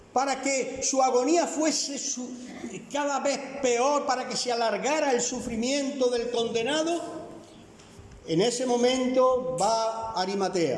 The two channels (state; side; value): identical; both; correlation 1.00